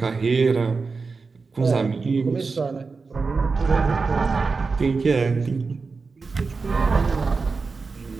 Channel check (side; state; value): left; quieter; 4.4 dB